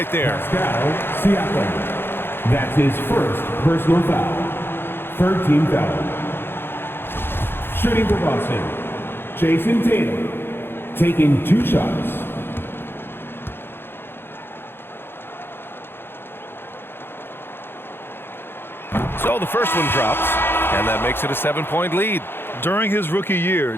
there. Pascal Siakam. That's his first personal foul. Third team foul. Shooting for Boston. Jason Tatum. Taking 2 shots. So the first one drops. And that makes it a 7-point lead. During his rookie year,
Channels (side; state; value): right; late; 0.11 ms